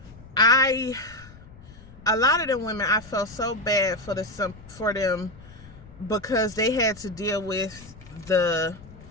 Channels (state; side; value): noise; left; rumble, 20 dB below the sound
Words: a lot of them women, I felt so bad for them because they had to deal with the